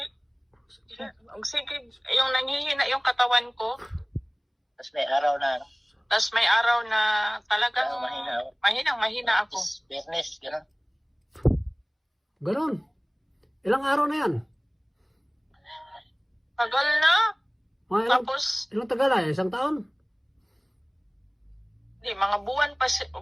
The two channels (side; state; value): both; identical; correlation 1.00